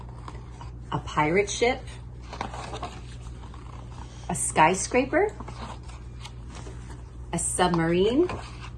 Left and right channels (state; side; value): identical; both; correlation 1.00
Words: a pirate ship, a skyscraper, a submarine,